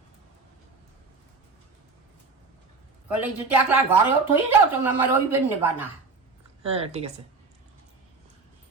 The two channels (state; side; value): quieter; left; 4.2 dB